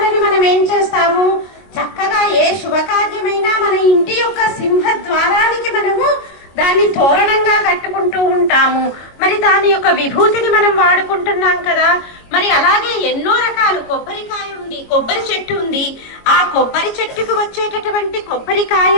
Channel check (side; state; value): right; late; 22 ms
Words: మనం ఏం చేస్తాము, చక్కగా ఏ శుభకార్యమైనా మన ఇంటి యొక్క సింహద్వారానికి మనము దాన్ని తోరణంగా కట్టుకుంటూ ఉంటాము. మరి దాని యొక్క విభూతిని మనం వాడుకుంటున్నాం కదా. మరి అలాగే ఎన్నో రకాలు కొబ్బరికాయ ఉంది, కొబ్బరి చెట్టు ఉంది. ఆ కొబ్బరి చెట్టుకు వచ్చేటటువంటి